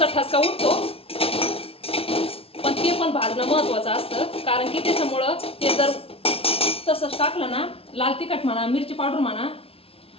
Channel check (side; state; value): right; late; 0.27 ms